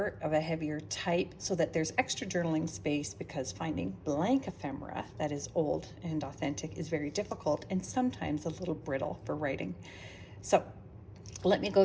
of a heavier type so that there's extra journaling space, because finding blank ephemera that is old and authentic is very difficult and sometimes a little brittle for writing. So let me go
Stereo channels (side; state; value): both; identical; correlation 1.00